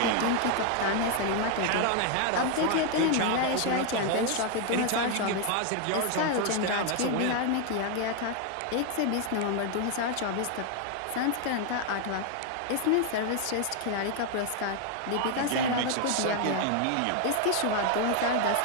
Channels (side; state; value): both; different; correlation 0.01